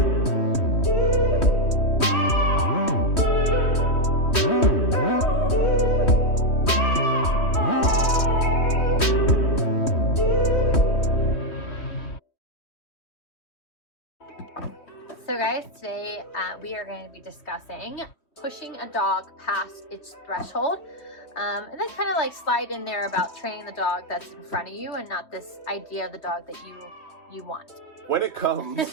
So guys, today we are going to be discussing pushing a dog past its threshold, and then kind of like slide in there about training the dog that's in front of you and not this idea of the dog that you want. When it comes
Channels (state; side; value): late; right; 3.1 ms